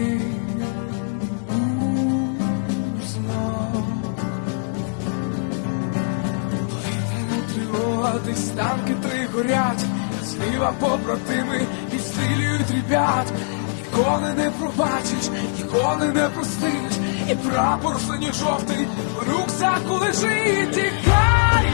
узнав. Повітряна тривога, десь танки 3 горять, зліва побратими відстрілюють ребят. Ніколи не пробачиш, ніколи не простиш, і прапор синьо-жовтий в рюкзаку лежить. Тікай,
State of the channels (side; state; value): right; silent; digital silence